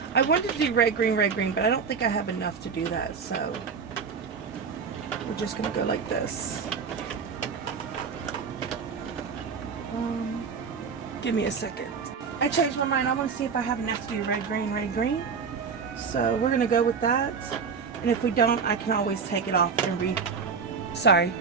I wanted to do red, green, but I don't think I have enough to do that, so we're just gonna go like this. Give me a second. I changed my mind. I want to see if I have enough to do red, green. So we're gonna go with that, and if we don't, I can always take it off and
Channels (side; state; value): left; quieter; 5.8 dB